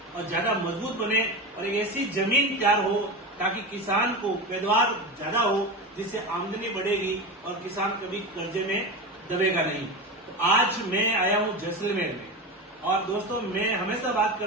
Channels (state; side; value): normal; both; correlation 0.23